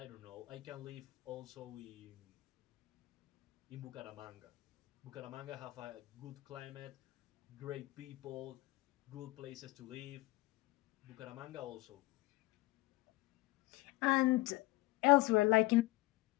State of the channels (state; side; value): quieter; right; 20.4 dB